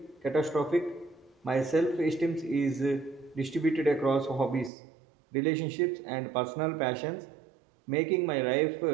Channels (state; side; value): drops out; left; at 4.7 s